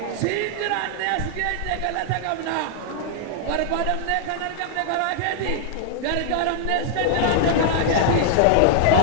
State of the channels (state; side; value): different; both; correlation 0.00